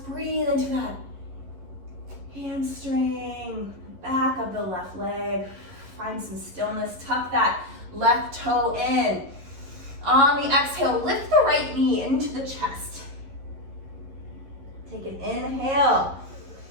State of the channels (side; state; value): left; late; 11 ms